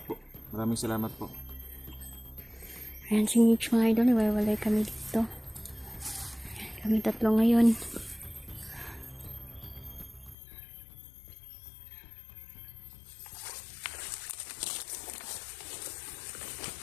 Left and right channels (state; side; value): drops out; right; at 10.4 s